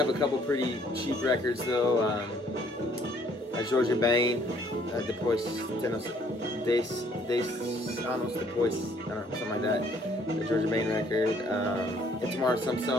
a couple pretty cheap records though. Jorge Ben, Depois Anos Depois, I don't know, something like that. The Jorge Ben record, Itamar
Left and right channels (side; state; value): both; normal; correlation 0.62